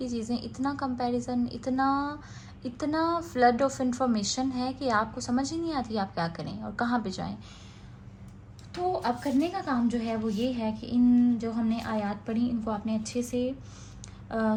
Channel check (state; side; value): identical; both; correlation 1.00